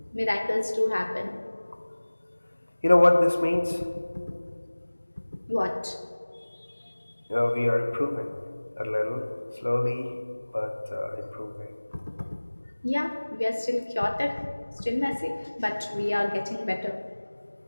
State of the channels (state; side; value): inverted; both; correlation -1.00